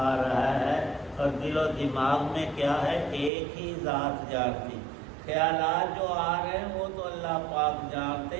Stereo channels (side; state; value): left; drops out; at 3.3 s